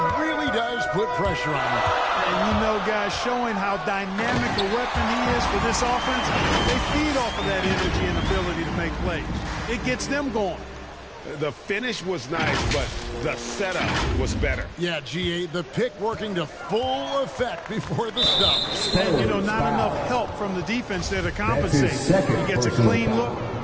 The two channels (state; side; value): identical; both; correlation 1.00